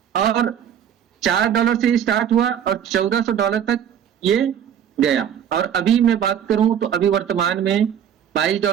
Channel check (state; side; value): quieter; left; 9.1 dB